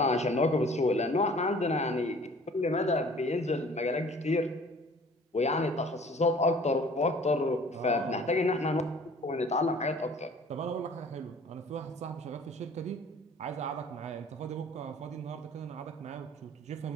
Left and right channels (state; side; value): normal; both; correlation 0.50